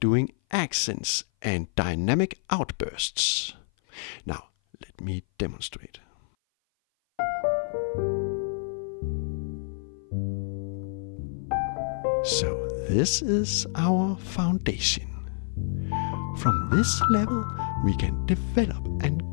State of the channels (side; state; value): right; silent; 56 dB below the other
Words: accents and dynamic outbursts. Now, let me demonstrate. So this is our foundation. From this level, we can develop and